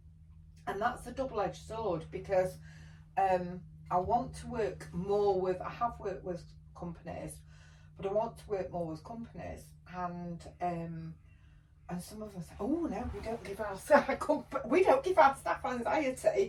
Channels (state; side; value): identical; both; correlation 1.00